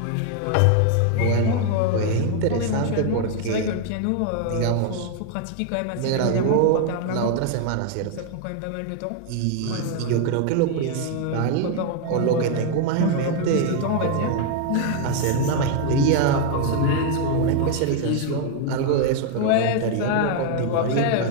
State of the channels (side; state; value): both; different; correlation 0.00